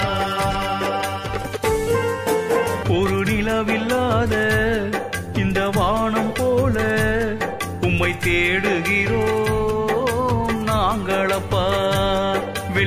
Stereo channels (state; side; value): identical; both; correlation 1.00